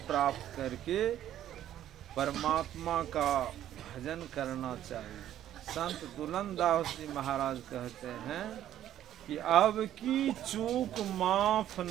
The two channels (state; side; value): quieter; left; 11.9 dB